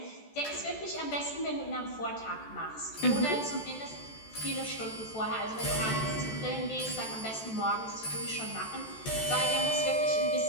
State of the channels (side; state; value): right; late; 14 ms